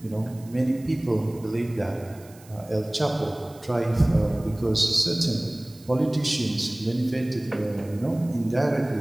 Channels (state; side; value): noise; right; hiss, 24 dB below the sound